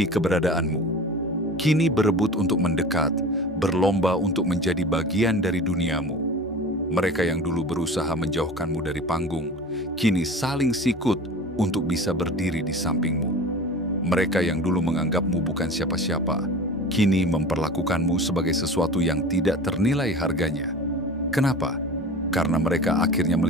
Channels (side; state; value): both; normal; correlation 0.36